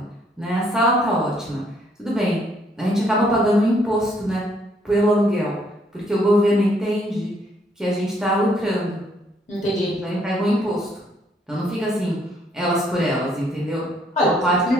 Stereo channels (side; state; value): both; normal; correlation 0.68